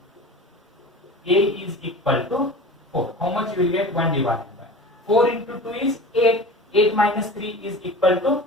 a is equal to 4. How much you will get? 1 divided by 4 into 2 is 8. 8 minus 3 is equal to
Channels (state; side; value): normal; both; correlation 0.36